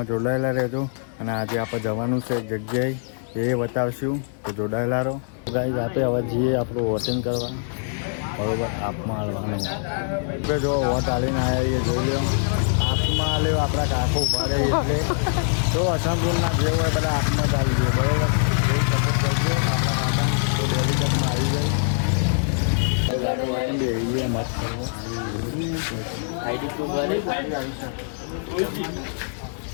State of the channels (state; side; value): silent; right; digital silence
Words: જોડાયેલા રહેજો. અને આજે આપણે જવાનું છે એક જગ્યાએ, એ બતાવશું, તો જોડાયેલા રહો. ગાઈઝ આપણે હવે જઈએ આપણું વોટિંગ કરવા, બરોબર. આપમાં હાલવાનું જો વોટ આલીને આવ્યા જોઈ લો. આપમાં હાલ્યો આપણા કાકો ઉભા રહે એટલે તો અસંપૂર્ણના જે હોય બધા આપમાં જ આવી જાય, બરોબર. એ સપોર્ટ કરજો આપણા કાકા, તો ડેલિકેટમાં આવી જાય મત કરવો. આઈડી પ્રૂફ ભરે